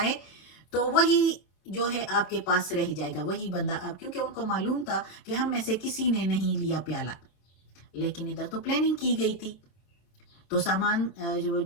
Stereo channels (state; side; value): late; right; 26 ms